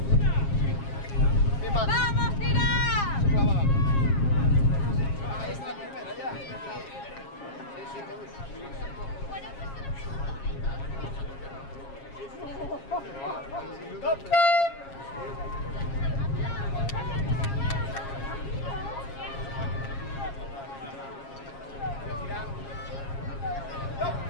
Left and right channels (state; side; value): late; right; 7.4 ms